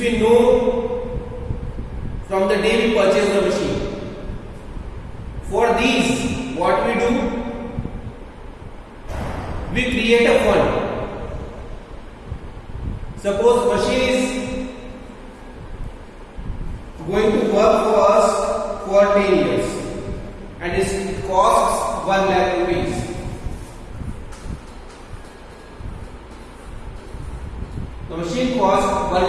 know from the day we purchase the machine. For these, what we do? We create a fund. Suppose machine is going to work for us for 10 years and it costs 1 lakh rupees. The machine costs 1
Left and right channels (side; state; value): both; identical; correlation 1.00